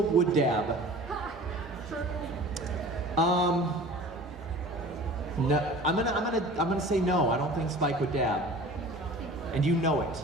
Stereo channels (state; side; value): normal; both; correlation 0.42